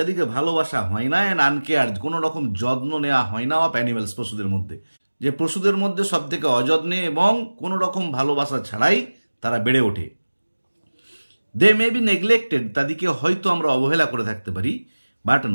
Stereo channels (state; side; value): inverted; both; correlation -1.00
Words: ভালোবাসা হয় না, অ্যান্ড আনকেয়ার্ড, কোনো রকম যত্ন নেওয়া হয় না, অফ অ্যানিমেলস, পশুদের মধ্যে। যে পশুদের মধ্যে সব থেকে অযত্নে এবং কোনো রকম ভালোবাসা ছাড়াই তারা বেড়ে ওঠে। দে মে বি নেগলেক্টেড, তাদেরকে হয়তো আমরা অবহেলা করে থাকতে পারি, but